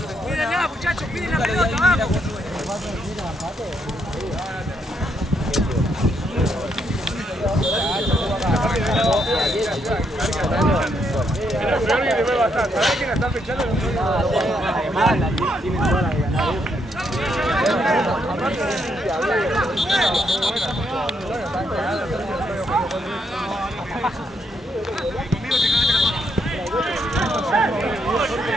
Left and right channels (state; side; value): normal; both; correlation 0.76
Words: Pídenla, muchachos, piden la pelota, vamos. ¿Sabés quién la está fechando?